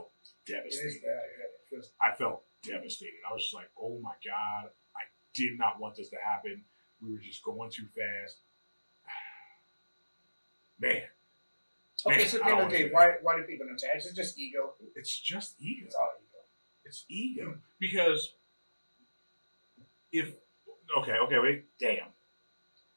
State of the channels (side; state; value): both; inverted; correlation -1.00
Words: devastated. I felt devastated. I was just like, oh my God, I did not want this to happen. We were just going too fast. Man. Okay, so at the end of the day, why do people not tap? Is it just ego? It's just ego. It's all ego. It's ego. Because wait, damn.